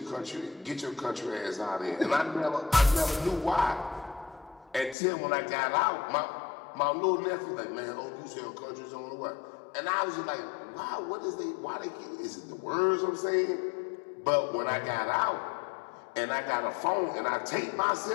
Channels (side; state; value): right; drops out; at 5.0 s